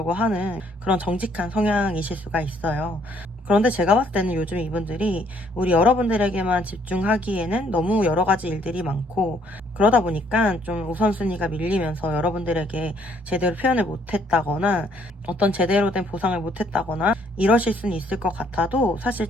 하는 그런 정직한 성향이실 수가 있어요. 그런데 제가 봤을 때는 요즘 이분들이 우리 여러분들에게만 집중하기에는 너무 여러 가지 일들이 많고, 그러다 보니까 좀 우선순위가 밀리면서 여러분들에게 제대로 표현을 못했다거나 어떤 제대로 된 보상을 못했다거나 이러실 수는 있을 것 같아도 사실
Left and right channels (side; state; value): both; normal; correlation 0.65